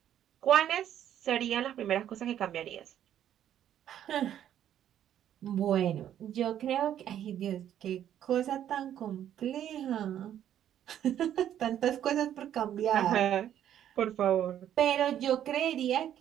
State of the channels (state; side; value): quieter; left; 10.6 dB